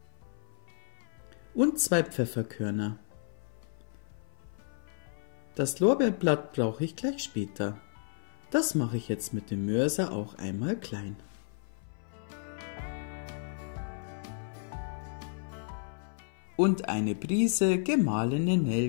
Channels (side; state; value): right; silent; 56 dB below the other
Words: und 2 Pfefferkörner. Das Lorbeerblatt brauche ich gleich später. Das mache ich jetzt mit dem Mörser auch einmal klein. Und eine Prise gemahlene